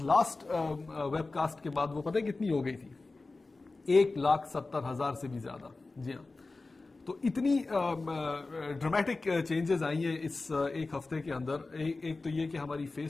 لاسٹ ویب کاسٹ کے بعد وہ پتہ کتنی ہو گئی تھی؟ 1,70,000 سے بھی زیادہ. جی ہاں، تو اتنی ڈرامیٹک چینجز آئی ہیں اس ایک ہفتے کے اندر. ایک تو یہ کہ ہماری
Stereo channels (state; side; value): quieter; right; 3.5 dB